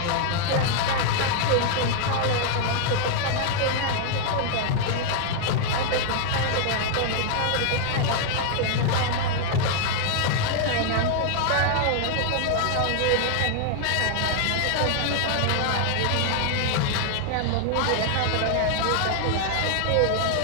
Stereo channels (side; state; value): both; different; correlation 0.00